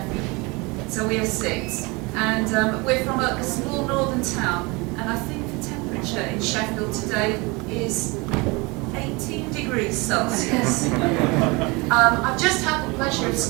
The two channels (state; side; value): quieter; left; 26.2 dB